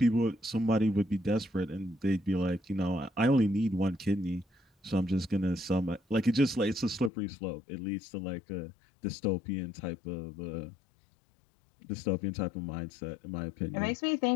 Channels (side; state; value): right; drops out; at 7.1 s